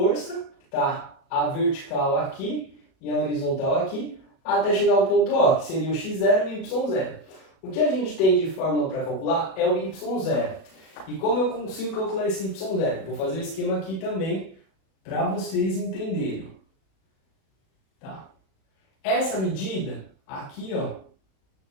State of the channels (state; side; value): late; right; 37 ms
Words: tá? A vertical aqui e a horizontal aqui, até chegar ao ponto O, que seria o x0 e o y0. O que a gente tem de fórmula para calcular é o y0. E como eu consigo calcular esse y0? Vou fazer o esquema aqui também para vocês entenderem. Tá? Essa medida aqui, ó,